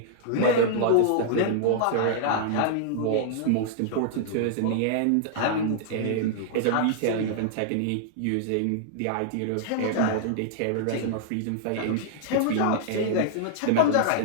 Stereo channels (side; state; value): both; different; correlation -0.01